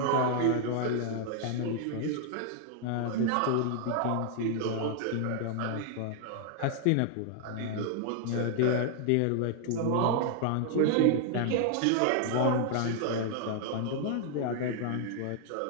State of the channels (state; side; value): different; both; correlation 0.00